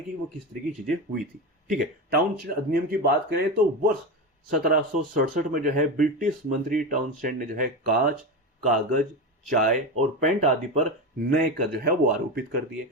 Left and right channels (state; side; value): normal; both; correlation 0.19